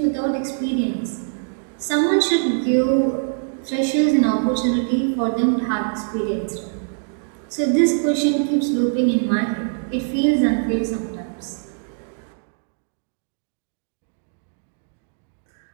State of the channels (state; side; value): silent; left; digital silence